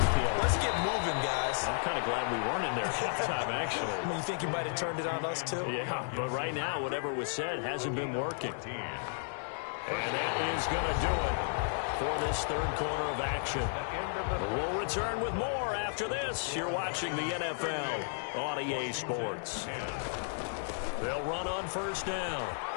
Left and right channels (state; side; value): silent; right; digital silence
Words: Let's get moving, guys." I'm kind of glad we weren't in there at halftime, actually. You think you might have turned it on us, too? Yeah, but right now, whatever was said hasn't been working. And that is going to do it for this third quarter of action. We'll return with more after this. You're watching the NFL on EA Sports. They'll run on first down.